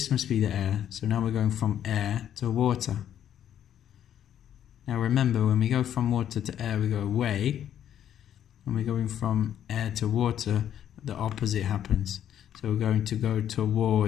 must be the air. So now we're going from air to water. Now remember, when we go from water to air, we go away. When we're going from air to water, the opposite happens. So we're going to go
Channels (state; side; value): quieter; right; 10.3 dB